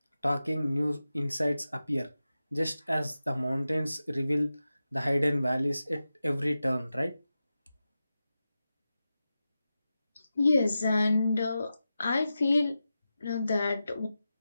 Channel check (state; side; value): inverted; both; correlation -0.92